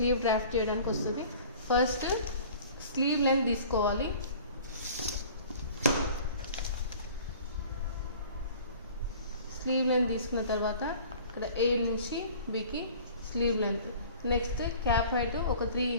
డ్రాఫ్ట్ చేయడానికి వస్తుంది. ఫస్ట్ స్లీవ్ లెంత్ తీసుకోవాలి. స్లీవ్ లెంత్ తీసుకున్న తర్వాత ఇక్కడ A నుంచి Bకి sleeve length. Next cap height ఒక 3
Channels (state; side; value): inverted; both; correlation -0.46